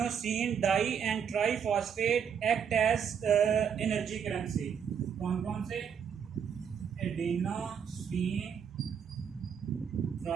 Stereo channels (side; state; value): left; quieter; 7.5 dB